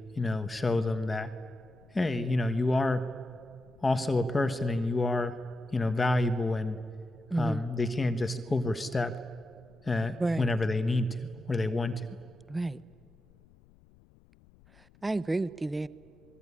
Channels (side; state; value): left; noise; rumble, 28 dB below the sound